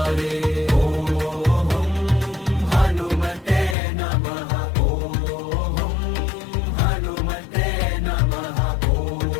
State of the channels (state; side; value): drops out; right; at 3.8 s